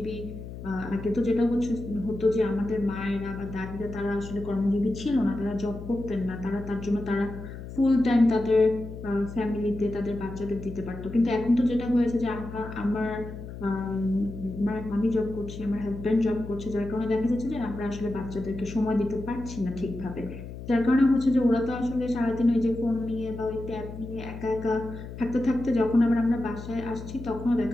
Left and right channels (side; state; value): left; noise; hum, 11 dB below the sound